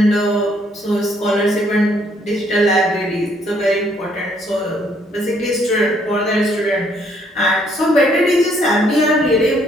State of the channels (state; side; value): normal; both; correlation 0.67